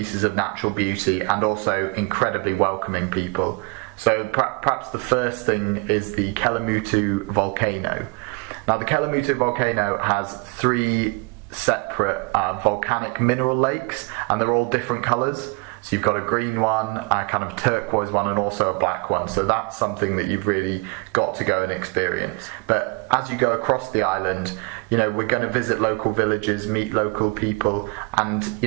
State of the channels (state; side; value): quieter; left; 29.8 dB